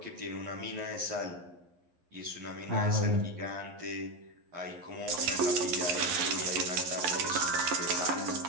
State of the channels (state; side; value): late; left; 11 ms